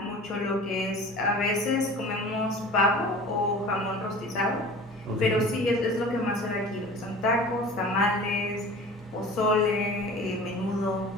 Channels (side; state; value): both; normal; correlation 0.40